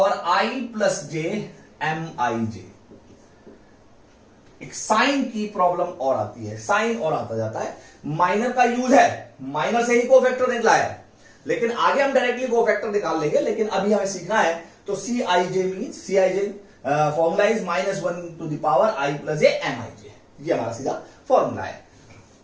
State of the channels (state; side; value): identical; both; correlation 1.00